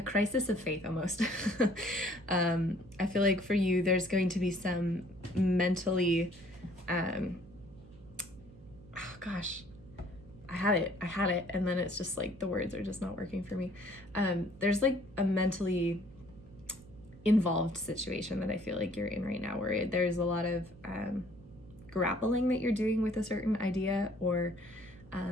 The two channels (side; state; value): right; noise; hum, 21 dB below the sound